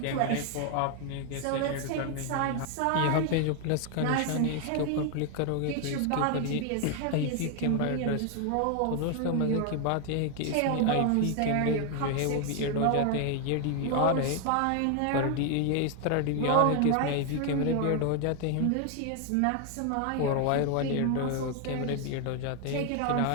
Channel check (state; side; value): different; both; correlation 0.00